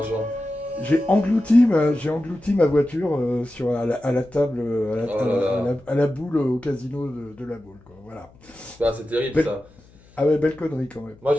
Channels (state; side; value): noise; left; hum, 27 dB below the sound